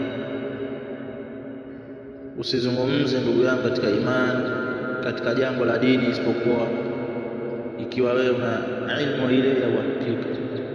usizungumze ndugu yangu katika imani, katika jambo la dini, isipokuwa ikiwa wewe una ilmu ile ya uhakika.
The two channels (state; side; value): identical; both; correlation 1.00